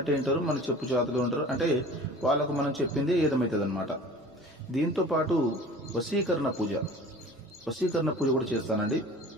వింటారు, మన చెప్పు చేతులు ఉంటారు. అంటే వాళ్ళకు మనం చెప్పింది ఏదమవుతుంది అనమాట. దీంతో పాటు వశీకరణ పూజ కూడా చేస్తానండి.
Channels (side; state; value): both; normal; correlation 0.42